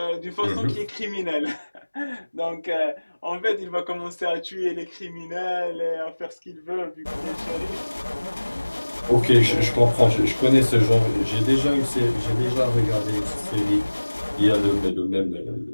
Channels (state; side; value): inverted; both; correlation -1.00